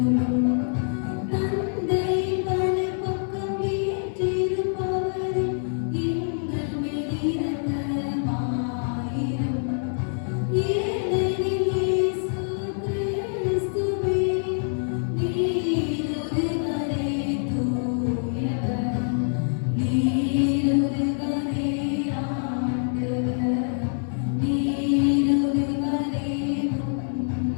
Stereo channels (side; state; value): right; silent; 62 dB below the other